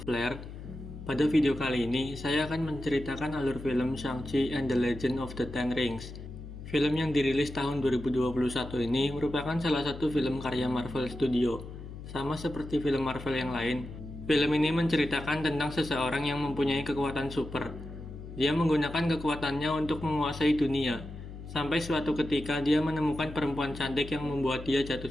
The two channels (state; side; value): noise; left; hum, 12 dB below the sound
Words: Pada video kali ini, saya akan menceritakan alur film Shang-Chi and the Legend of the Ten Rings. Film yang dirilis tahun 2021 ini merupakan salah satu film karya Marvel Studio. Sama seperti film Marvel yang lain, film ini menceritakan tentang seseorang yang mempunyai kekuatan super. Dia menggunakan kekuatannya untuk menguasai dunia, sampai suatu ketika dia menemukan perempuan cantik yang membuat dia jatuh